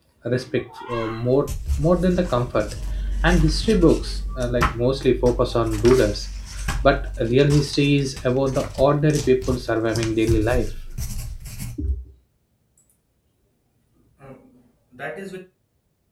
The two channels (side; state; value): both; identical; correlation 1.00